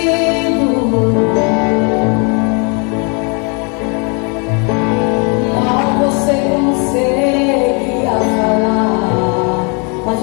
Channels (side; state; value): right; quieter; 34.6 dB